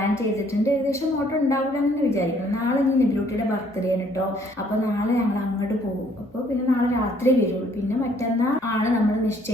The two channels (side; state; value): both; normal; correlation 0.63